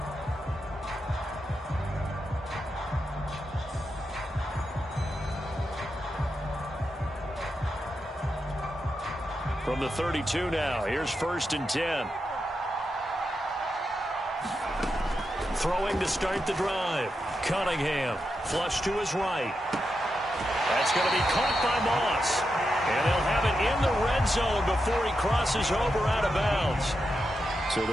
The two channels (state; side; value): normal; both; correlation 0.87